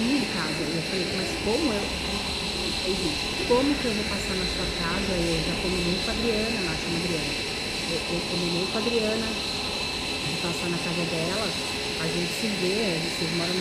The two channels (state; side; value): identical; both; correlation 1.00